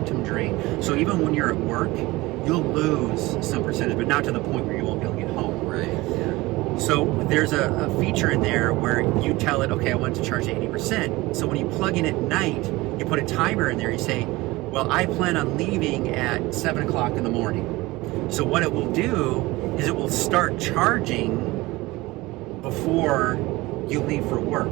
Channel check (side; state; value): left; quieter; 20.6 dB